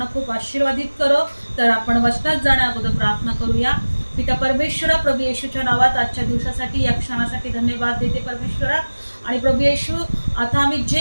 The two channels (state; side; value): inverted; both; correlation -1.00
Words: खूप आशीर्वादित करो। तर आपण वचनात जाण्या अगोदर प्रार्थना करूया। पिता परमेश्वरा, प्रभू येशूच्या नावात आजच्या दिवसासाठी, या क्षणासाठी धन्यवाद देते परमेश्वरा। आणि प्रभू येशू, आता आम्ही